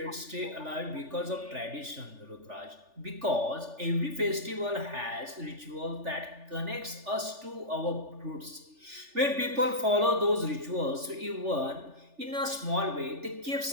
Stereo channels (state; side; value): late; left; 3.4 ms